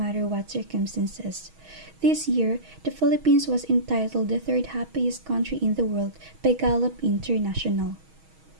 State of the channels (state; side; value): late; left; 6.3 ms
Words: what circumstances. This year, the Philippines was entitled the third happiest country in the world by Gallup International.